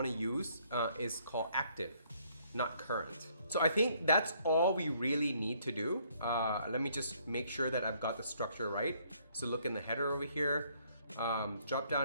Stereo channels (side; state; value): both; inverted; correlation -0.66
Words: use is called active, not current. So I think that's all we really need to do. Let me just make sure that I've got the structure right. So look in the header over here, drop